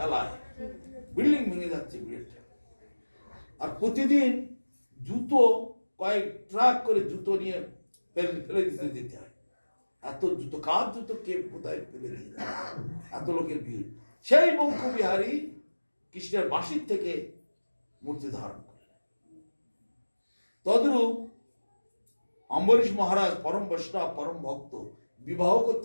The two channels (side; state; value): both; inverted; correlation -1.00